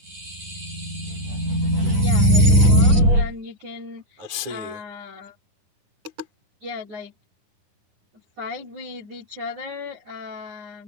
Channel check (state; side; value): late; left; 10 ms